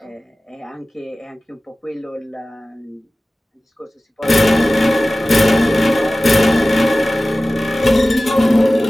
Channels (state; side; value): normal; both; correlation 0.96